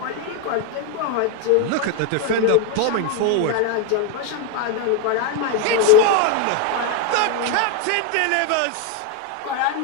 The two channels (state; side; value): different; both; correlation 0.01